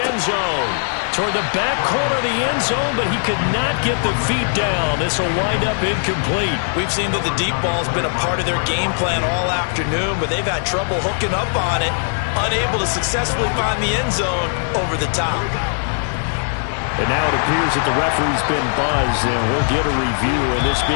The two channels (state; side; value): silent; right; 64 dB below the other